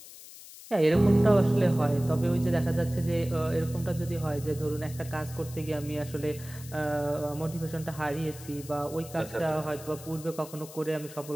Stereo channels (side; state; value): left; noise; hiss, 16 dB below the sound